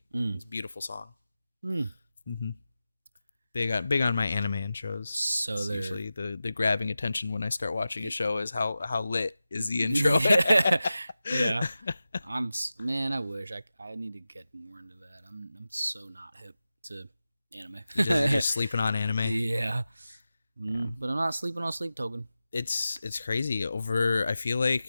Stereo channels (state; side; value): inverted; both; correlation -0.94